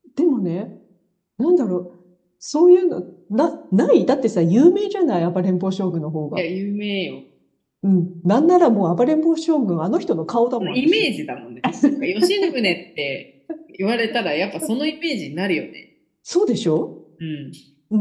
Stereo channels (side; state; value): both; identical; correlation 1.00